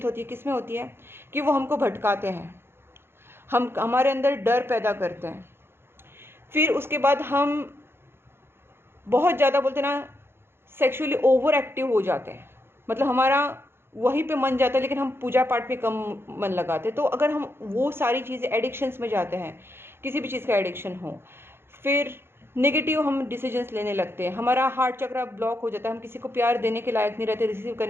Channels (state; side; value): late; left; 0.11 ms